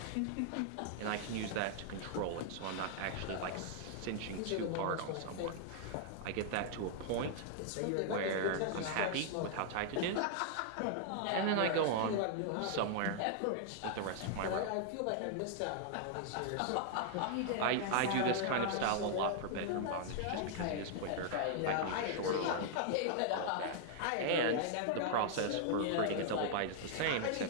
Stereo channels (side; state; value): both; different; correlation -0.01